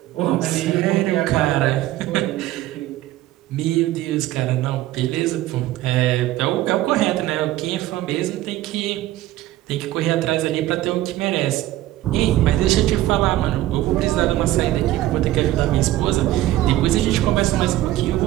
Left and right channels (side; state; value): left; quieter; 15.2 dB